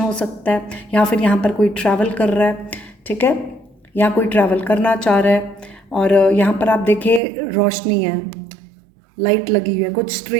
सकता है, या फिर यहाँ पर कोई ट्रैवल कर रहा है। ठीक है, यहाँ कोई ट्रैवल करना चाह रहा है। और यहाँ पर आप देखिए रोशनी है, लाइट लगी हुई है, कुछ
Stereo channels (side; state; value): left; drops out; at 7.2 s